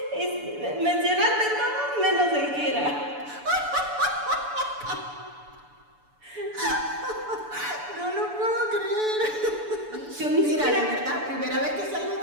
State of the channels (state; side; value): late; left; 6.9 ms